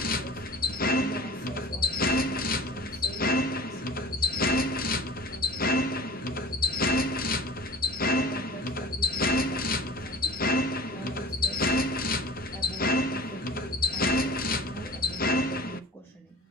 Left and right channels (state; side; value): normal; both; correlation 0.39